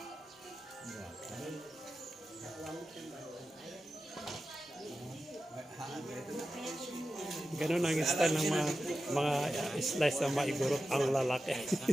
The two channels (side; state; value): both; normal; correlation 0.92